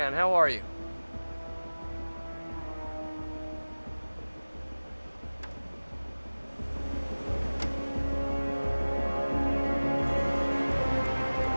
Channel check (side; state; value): both; inverted; correlation -1.00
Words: how are you?